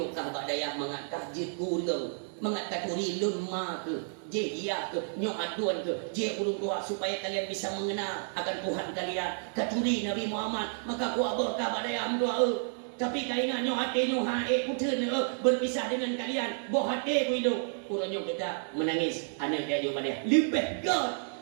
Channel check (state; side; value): silent; left; digital silence